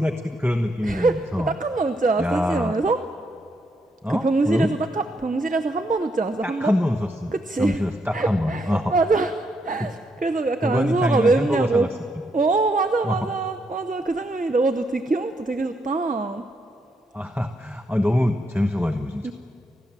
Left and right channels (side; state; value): both; normal; correlation 0.77